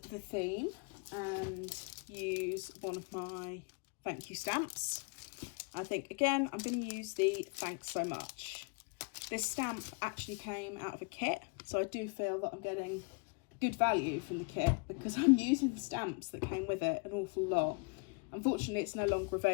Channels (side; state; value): right; quieter; 33.0 dB